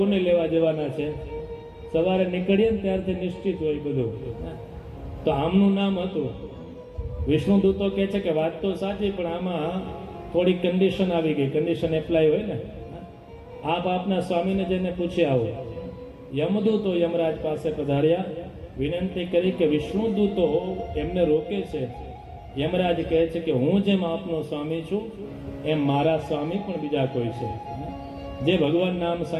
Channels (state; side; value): identical; both; correlation 1.00